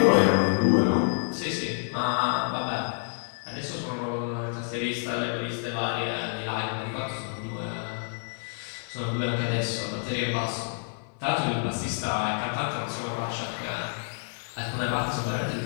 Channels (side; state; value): right; silent; digital silence